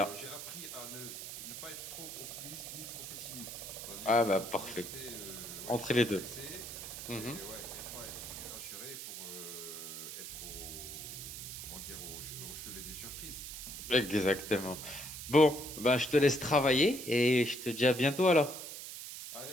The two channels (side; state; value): right; noise; hiss, 9 dB below the sound